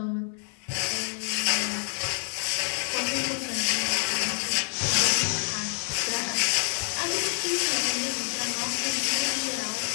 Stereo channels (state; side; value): silent; right; digital silence